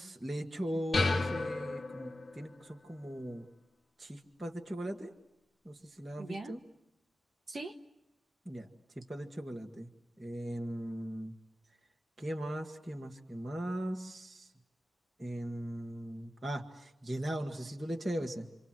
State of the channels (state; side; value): normal; both; correlation 0.93